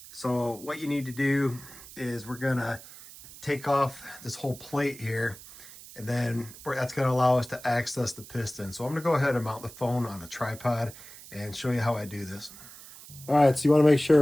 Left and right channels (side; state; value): right; noise; hiss, 17 dB below the sound